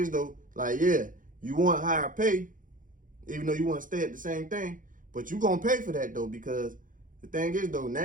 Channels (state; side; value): late; left; 0.39 ms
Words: though, like, yeah, you want higher pay, even though you want to stay at the same thing, but you going to pay for that, though, because the thing is, though,